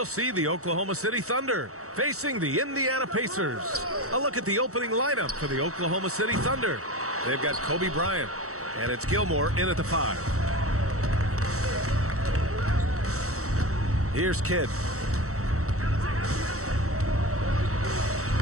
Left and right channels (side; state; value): left; late; 0.64 ms